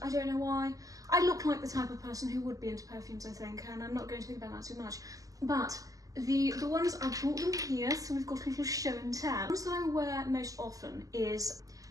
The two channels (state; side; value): late; left; 0.17 ms